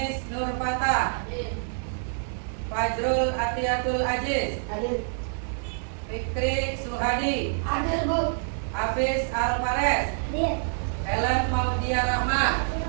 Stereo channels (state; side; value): silent; left; digital silence